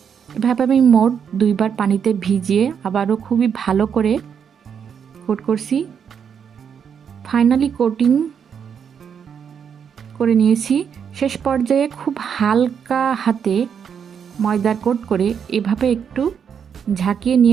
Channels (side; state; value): left; quieter; 7.4 dB